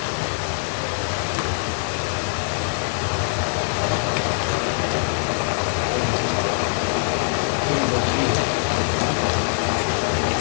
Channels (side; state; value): right; silent; 64 dB below the other